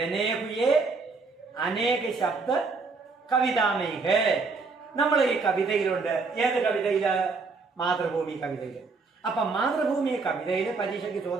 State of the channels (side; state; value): left; quieter; 4.3 dB